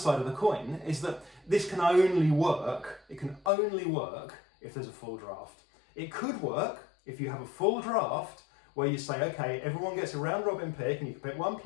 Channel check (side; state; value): right; drops out; at 3.5 s